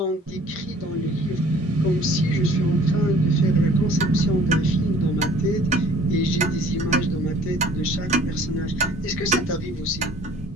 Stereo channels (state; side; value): normal; both; correlation 0.53